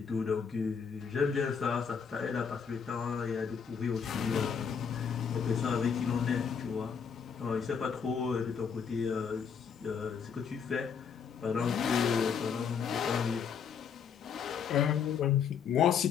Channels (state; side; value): quieter; right; 6.7 dB